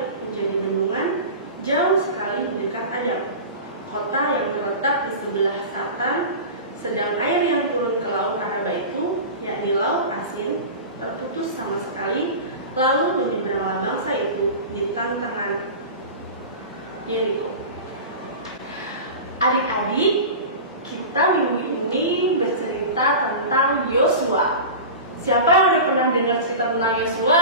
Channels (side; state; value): both; inverted; correlation -0.31